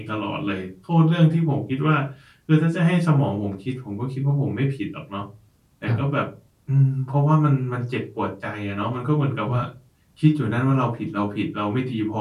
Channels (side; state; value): both; identical; correlation 1.00